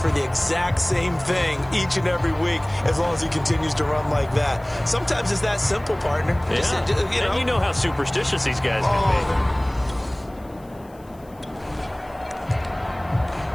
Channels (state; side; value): noise; left; hiss, 29 dB below the sound